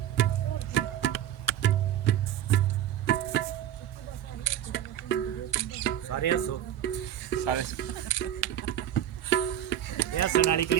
सारे हसो सारे ये हसन वाली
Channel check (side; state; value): left; quieter; 11.2 dB